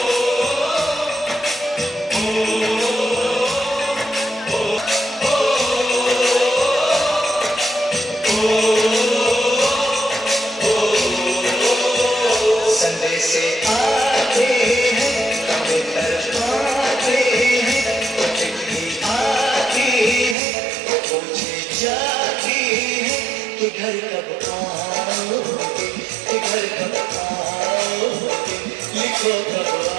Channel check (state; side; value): drops out; left; at 20.4 s